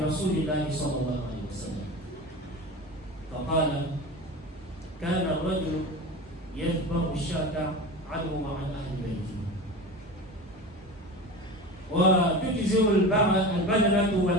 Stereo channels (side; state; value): both; normal; correlation 0.30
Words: رسول الله صلى الله عليه وسلم فقال كان الرجل يذبح الشاة عنه وعن أهل بيته وتجزئ البدنة